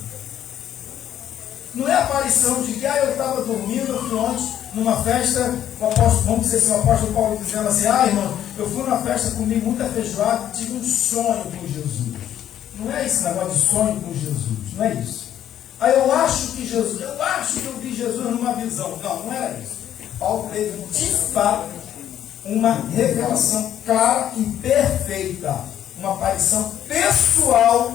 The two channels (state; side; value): quieter; right; 10.8 dB